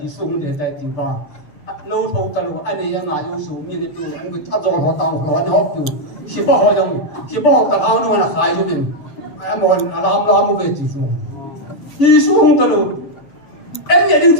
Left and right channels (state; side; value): late; right; 7.0 ms